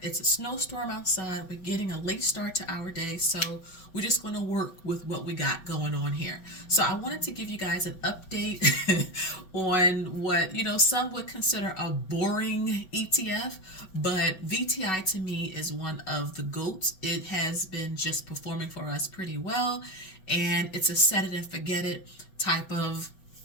it's a snowstorm outside, we're getting a late start to our day, so we're just going to work with what we got going on here. So I wanted to give you guys an update on what, some would consider a boring ETF, but VTI to me is one of the GOATs. It has been just performing for us pretty well, and it's a set it and forget it type of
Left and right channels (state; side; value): late; right; 5.3 ms